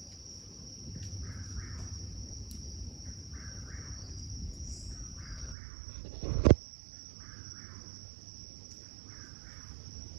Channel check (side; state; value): left; drops out; at 5.6 s